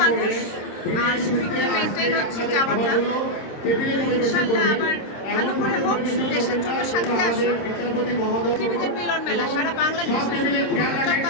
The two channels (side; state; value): right; late; 26 ms